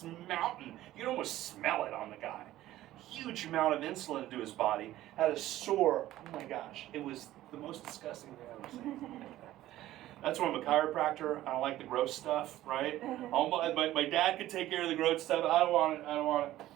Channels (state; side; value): quieter; left; 14.7 dB